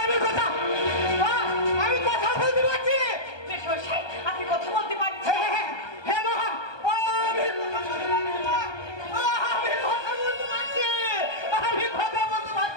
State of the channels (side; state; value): right; late; 1.2 ms